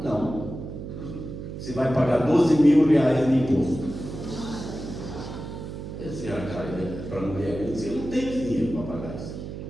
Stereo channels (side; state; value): right; noise; hum, 9 dB below the sound